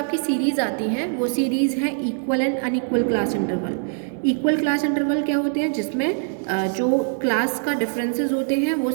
सीरीज़ आती हैं वो सीरीज़ है equal and unequal class interval. Equal class interval क्या होते हैं, जिसमें जो क्लास का डिफरेंसेस होते हैं वो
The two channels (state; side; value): silent; left; digital silence